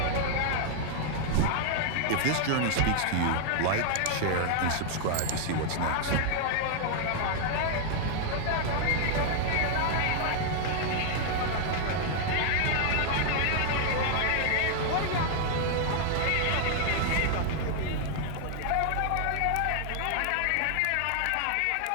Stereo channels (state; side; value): different; both; correlation 0.00